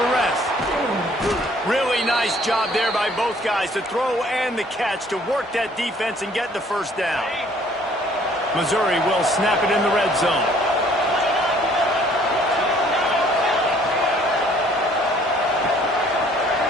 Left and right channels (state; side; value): normal; both; correlation 0.59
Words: Really nice job there by both guys, the throw and the catch, to work that defense and get the first down. Missouri will snap it in the red zone.